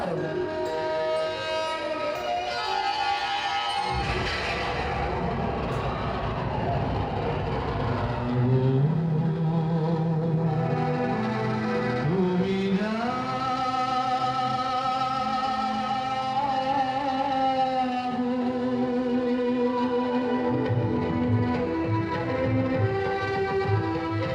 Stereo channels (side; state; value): both; identical; correlation 1.00